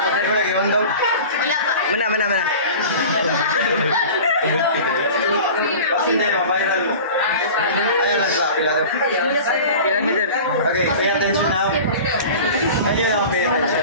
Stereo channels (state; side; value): inverted; both; correlation -0.38